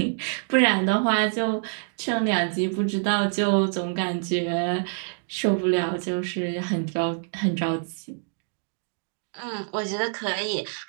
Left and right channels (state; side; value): silent; left; digital silence